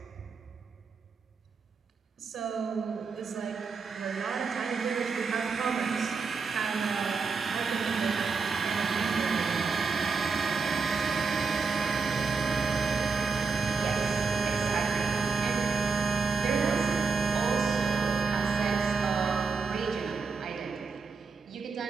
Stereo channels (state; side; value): quieter; left; 4.9 dB